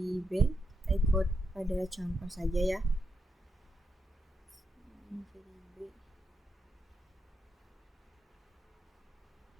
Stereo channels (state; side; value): normal; both; correlation 0.83